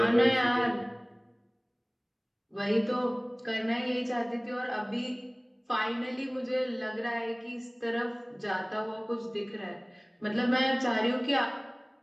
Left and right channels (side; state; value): both; identical; correlation 1.00